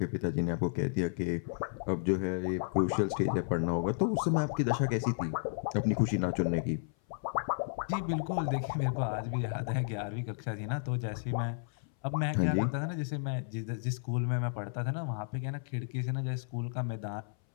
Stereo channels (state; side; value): silent; right; 56 dB below the other